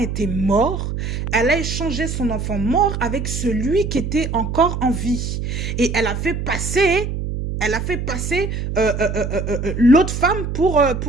mort, elle a échangé son enfant mort avec celui qui était encore en vie. Et elle a fait passer l'autre femme pour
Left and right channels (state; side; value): noise; right; hum, 4 dB below the sound